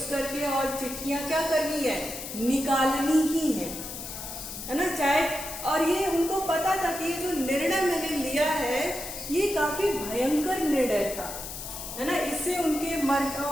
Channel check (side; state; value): left; noise; hiss, 9 dB below the sound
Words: करके और चिट्ठियां क्या करनी है, निकालनी ही है ना, चाहे। और ये उनको पता था कि ये जो निर्णय मैंने लिया है ये काफी भयंकर निर्णय था, है ना, इससे उनके